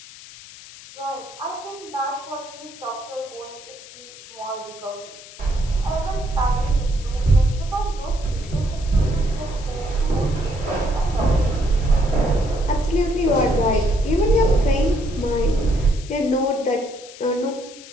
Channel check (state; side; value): noise; left; hiss, 18 dB below the sound